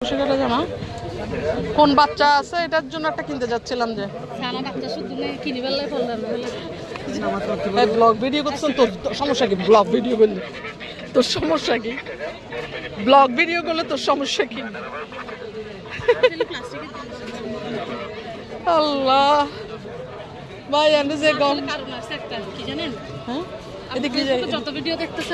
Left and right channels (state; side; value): identical; both; correlation 1.00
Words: জামা কোন বাচ্চা আছে এটার জন্য একটা কিনতে যাচ্ছিলাম যে ব্লগ ভিডিও করতেছেন। তোর সমস্যা কি? ব্লগ ভিডিও করলে তোর সমস্যা কি? ব্লগ ভিডিও করলে তোর সমস্যা কি? আল্লাহ ভাই আমি যে গম কি জানেন, হ্যাঁ এদিকে যত ভিডিও